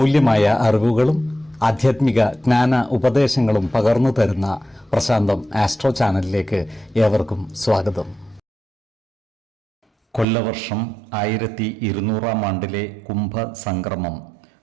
അറിവുകളും ആധ്യാത്മിക ജ്ഞാന ഉപദേശങ്ങളും പകർന്നു തരുന്ന പ്രശാന്തം ആസ്ട്രോ ചാനലിലേക്ക് ഏവർക്കും സ്വാഗതം. കൊല്ലവർഷം 1200 ആണ്ടിലെ കുംഭസംക്രമം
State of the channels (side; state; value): left; drops out; at 10.2 s